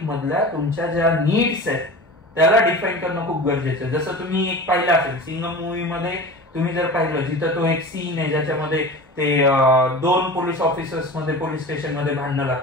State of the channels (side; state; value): both; normal; correlation 0.34